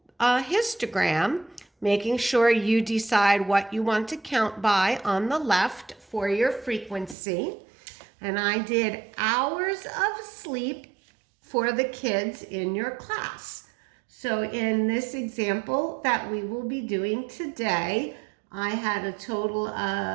histogram, making sure you decide what you want to count by on the left for your frequency. And I did hours of sleep for the kids in your class. So in this example that we will be doing today, I had a total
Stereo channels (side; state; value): left; drops out; at 7.2 s